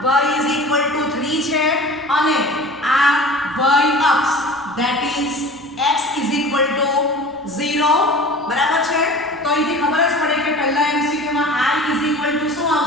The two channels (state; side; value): normal; both; correlation 0.40